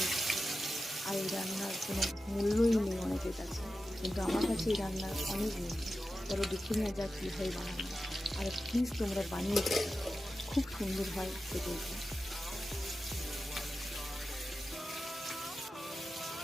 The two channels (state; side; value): normal; both; correlation 0.92